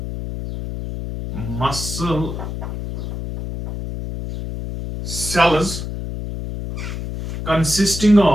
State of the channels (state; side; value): noise; left; hum, 6 dB below the sound